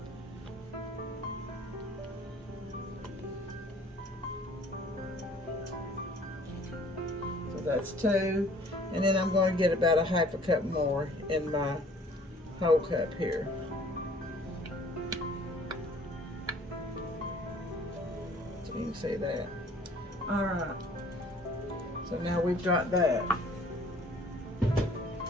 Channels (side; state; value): both; normal; correlation 0.54